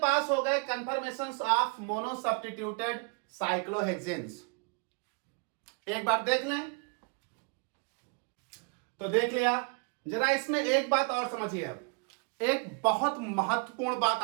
हो गए कंफर्मेशंस ऑफ मोनो सब्स्टिट्यूटेड साइक्लोहेक्सेन्स. एक बार देख लें. तो देख लिया. जरा इसमें एक बात और समझिए. अब एक बहुत महत्वपूर्ण बात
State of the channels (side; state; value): left; quieter; 35.1 dB